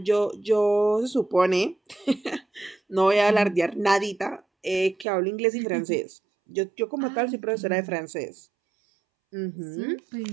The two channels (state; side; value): drops out; left; at 5.1 s